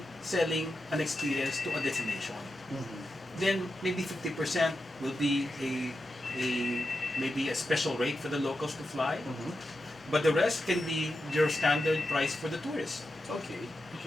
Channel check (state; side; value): normal; both; correlation 0.89